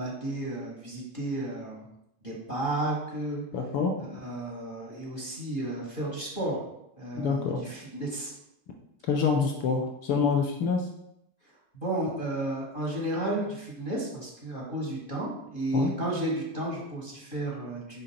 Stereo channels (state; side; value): late; right; 2.5 ms